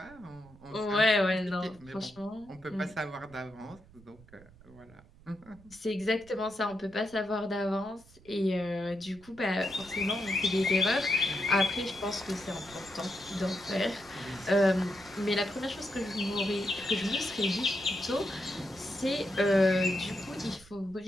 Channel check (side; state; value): right; noise; rumble, 24 dB below the sound